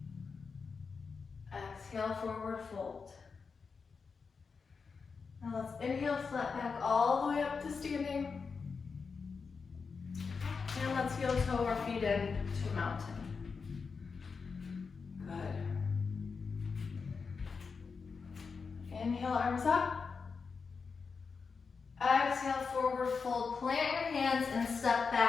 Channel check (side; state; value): right; quieter; 5.1 dB